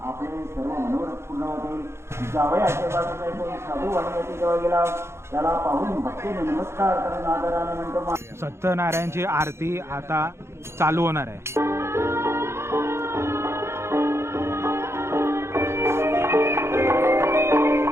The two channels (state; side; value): late; left; 0.13 ms